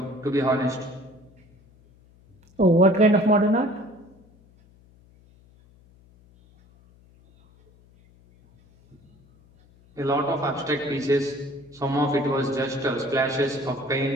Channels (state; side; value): noise; left; hum, 29 dB below the sound